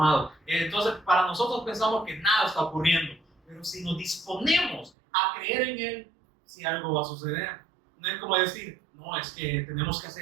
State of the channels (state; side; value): drops out; left; at 4.9 s